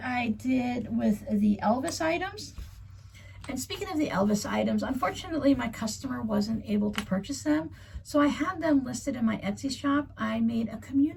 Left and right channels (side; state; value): both; identical; correlation 1.00